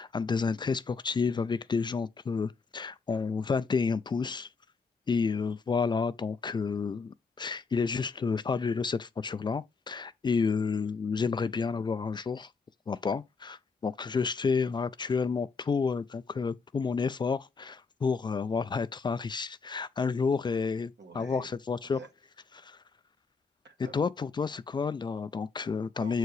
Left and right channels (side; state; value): right; quieter; 4.9 dB